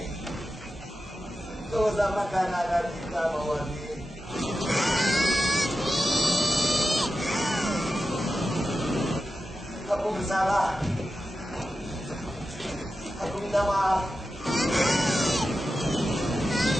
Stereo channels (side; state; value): both; normal; correlation 0.91